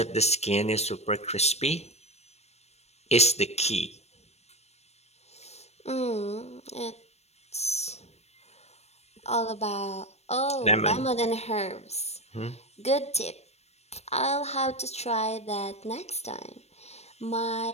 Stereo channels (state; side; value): late; right; 0.31 ms